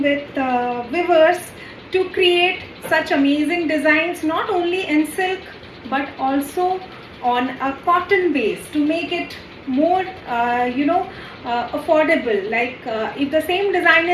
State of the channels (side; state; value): both; identical; correlation 1.00